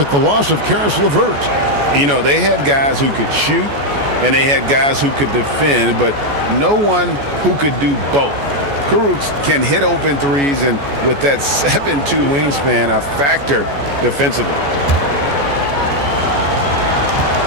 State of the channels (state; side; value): late; left; 14 ms